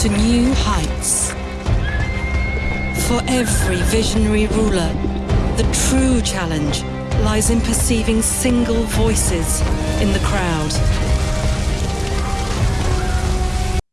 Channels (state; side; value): identical; both; correlation 1.00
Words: new heights. For every visionary ruler, the true challenge lies in perceiving single voices in the crowd.